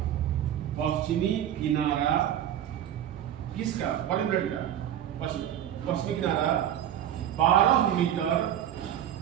पश्चिमी किनारा किसका? पॉलीब्लेड का पश्चिमी किनारा 12 मीटर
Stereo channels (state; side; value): quieter; left; 10.8 dB